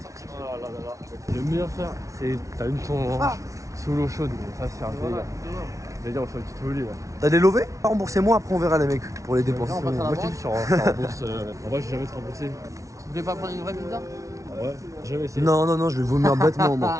Le meilleur faire, c'est t'as une ton sous l'eau chaude. Ça, c'est un délire. D'ailleurs, on fait une petite folie là. T'as des lovés? Remboursez-moi, après on verra les mecs pour les dépenses. Moi, je t'ai dit, sur rembourse. En vrai, j'ai jamais été remboursé. Vous voulez pas prendre une vraie pizza? Ouais, jamais essayé. Non, je vais vomir bêtement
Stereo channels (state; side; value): late; left; 0.15 ms